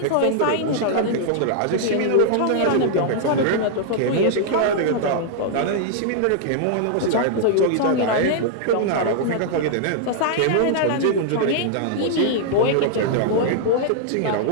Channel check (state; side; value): different; both; correlation -0.01